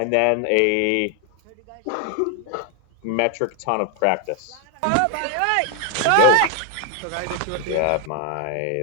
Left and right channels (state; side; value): different; both; correlation 0.00